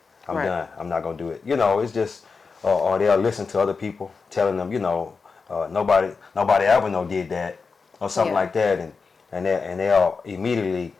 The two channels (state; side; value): quieter; right; 4.8 dB